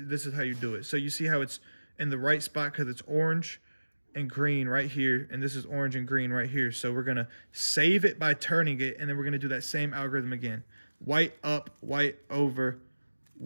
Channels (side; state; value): both; inverted; correlation -1.00